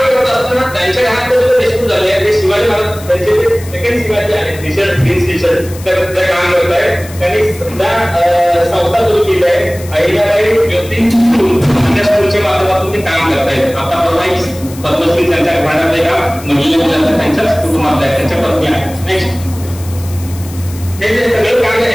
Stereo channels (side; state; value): left; noise; hiss, 18 dB below the sound